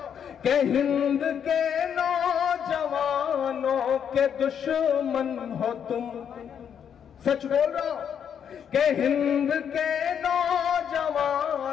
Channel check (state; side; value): quieter; right; 8.2 dB